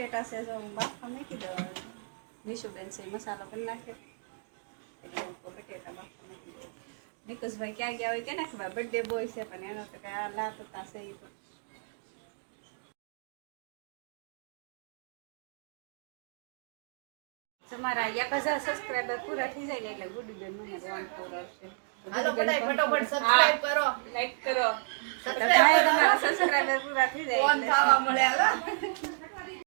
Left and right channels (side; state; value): left; silent; digital silence